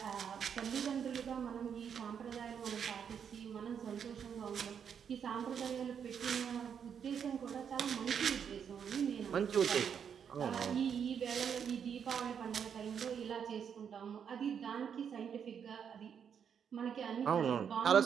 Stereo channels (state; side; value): quieter; left; 7.6 dB